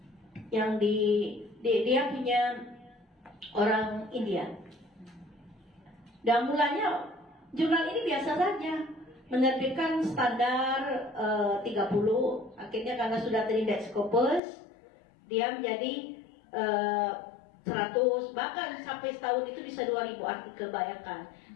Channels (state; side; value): drops out; right; at 14.4 s